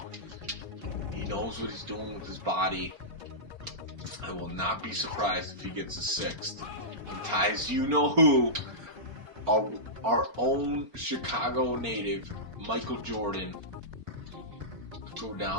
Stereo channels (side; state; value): left; late; 4.4 ms